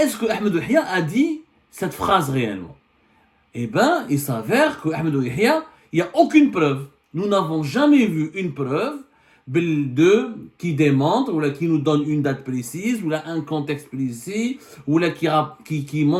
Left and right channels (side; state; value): both; identical; correlation 1.00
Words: que Ahmed Yahya a dit cette phrase réellement? Eh bien, il s'avère que Ahmed Yahya, il n'y a aucune preuve. Nous n'avons jamais vu une preuve qui démontre, ou là, qui nous donne une date précise, ou là, un contexte précis, ou là, qui